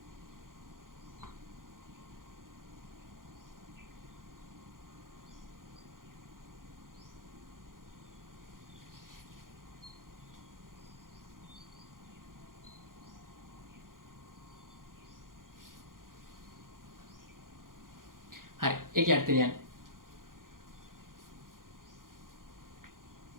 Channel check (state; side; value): late; left; 0.90 ms